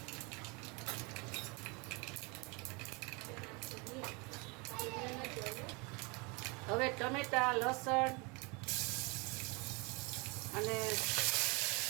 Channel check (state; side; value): quieter; left; 29.0 dB